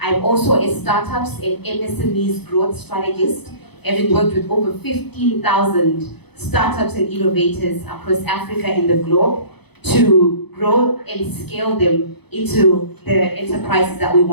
also a startups and MSMEs growth strategist, having worked with over 15,000 startups and innovators across Africa and the globe to grow and scale them into the enterprises that we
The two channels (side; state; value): right; late; 0.98 ms